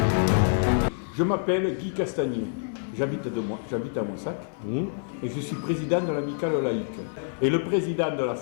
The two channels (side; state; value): right; silent; 58 dB below the other